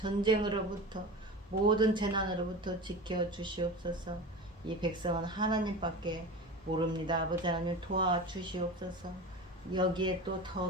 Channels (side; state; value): both; normal; correlation 0.30